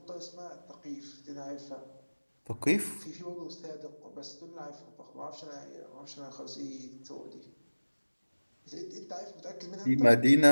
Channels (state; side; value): inverted; both; correlation -1.00